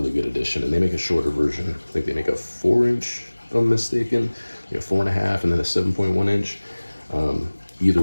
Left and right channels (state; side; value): inverted; both; correlation -1.00